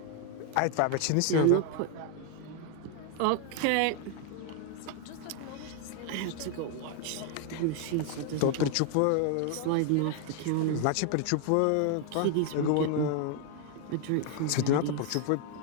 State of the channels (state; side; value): different; both; correlation 0.01